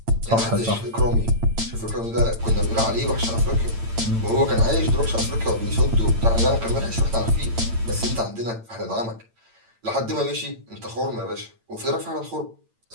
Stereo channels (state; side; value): late; left; 8.9 ms